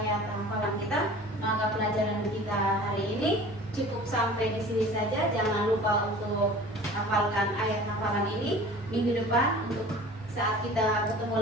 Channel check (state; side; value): normal; both; correlation 0.42